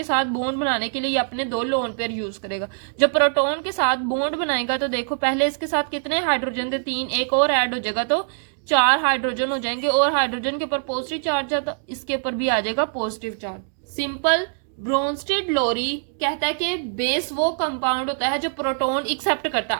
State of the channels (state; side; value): silent; left; digital silence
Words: साथ बॉन्ड बनाने के लिए ये अपने दो लोन पेयर यूज करेगा। जब प्रोटॉन के साथ बॉन्ड बनाएगा तो देखो पहले इसके साथ कितने हाइड्रोजन थे? 3, एक और ऐड हो जाएगा तो 4 हाइड्रोजन हो जाएंगे और हाइड्रोजन के ऊपर पॉजिटिव चार्ज है तो इसके ऊपर भी आ जाएगा पॉजिटिव चार्ज। सिंपल। ब्रोनस्टीड लोरी कहता है कि बेस वो कंपाउंड होता है जो प्रोटॉन एक्सेप्ट करता